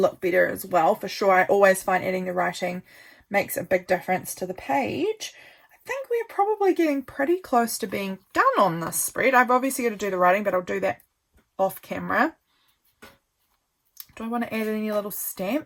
better as well, for sure. I always find adding the writing makes a big difference to the page. I think we're probably getting pretty close to being done on this spread. I've obviously got to do the writing, but I'll do that off camera. Do I want to add any little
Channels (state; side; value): identical; both; correlation 1.00